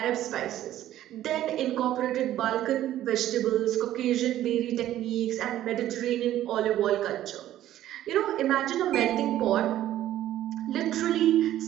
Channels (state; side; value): quieter; left; 13.0 dB